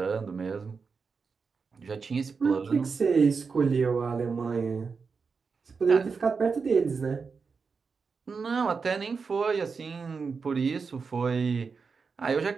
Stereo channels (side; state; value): left; quieter; 5.1 dB